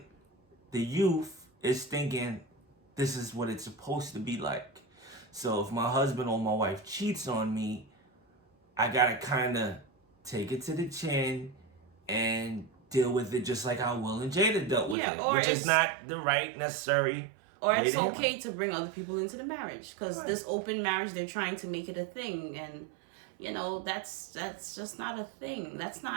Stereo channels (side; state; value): left; drops out; at 15.0 s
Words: the youth is thinking this is what it's supposed to be like. So if my husband or my wife cheats on me, I gotta kind of take it to the chin and deal with it just like how Will and Jada dealt with it, which is not the right, necessary. Or it's okay to bring other people into the marriage, because this open marriage, they're trying to make it a thing, and that's just not a thing. That's